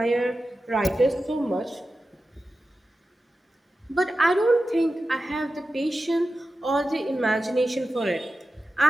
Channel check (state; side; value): normal; both; correlation 0.93